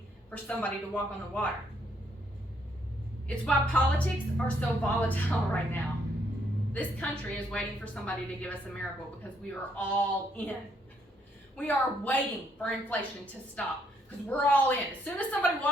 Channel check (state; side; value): normal; both; correlation 0.71